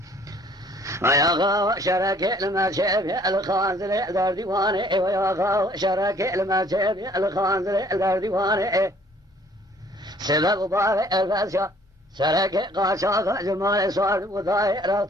ويا غاو شرك المشيب الخانزل دار ديواني ويا غاو شرك المشيب الخانزل دار ديواني سبب بارئ الفاسيا شرك قاشاق جمال سوار وضاي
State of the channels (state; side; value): normal; both; correlation 0.58